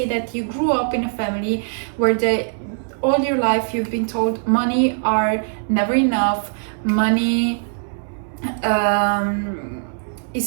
that you grew up in a family where all your life you've been told money are never enough, money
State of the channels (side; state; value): left; silent; 65 dB below the other